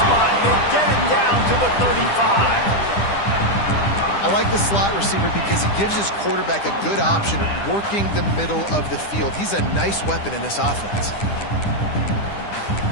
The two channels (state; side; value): late; right; 10 ms